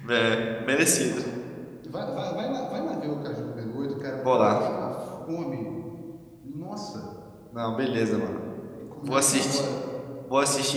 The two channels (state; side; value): identical; both; correlation 1.00